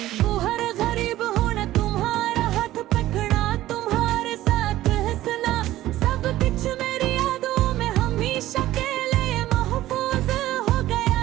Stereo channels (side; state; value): left; quieter; 15.0 dB